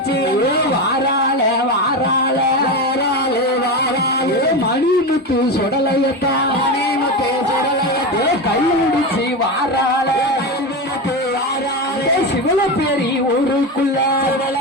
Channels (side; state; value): both; normal; correlation 0.18